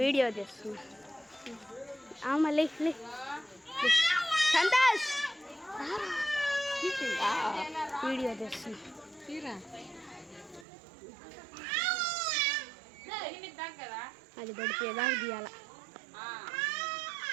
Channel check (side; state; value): left; drops out; at 10.7 s